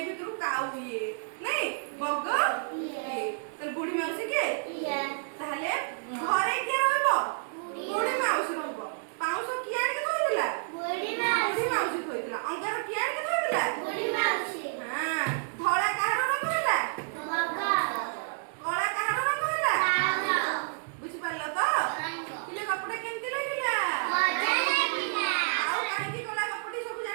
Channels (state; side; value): silent; left; digital silence